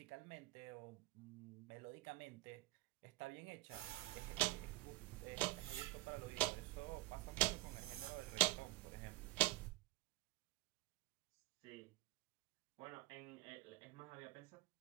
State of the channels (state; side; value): quieter; left; 18.5 dB